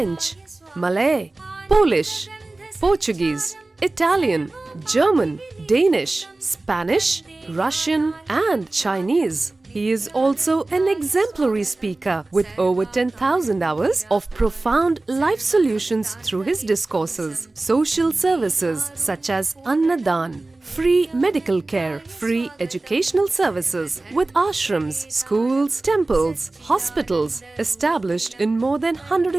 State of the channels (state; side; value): quieter; left; 3.1 dB